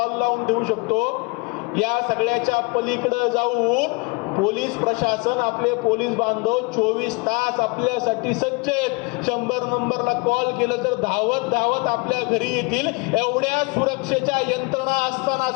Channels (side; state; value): right; quieter; 28.5 dB